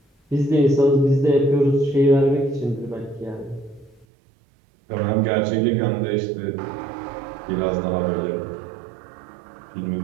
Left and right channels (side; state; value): left; drops out; at 4.0 s